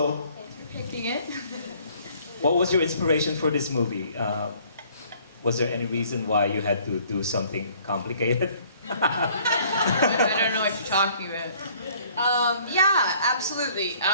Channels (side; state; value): both; inverted; correlation -0.58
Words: thanks for picking it. what was your inspiration for this movie? Was there any reason why you had to do something complicated? I don't know what you're talking about. Yeah, absolutely.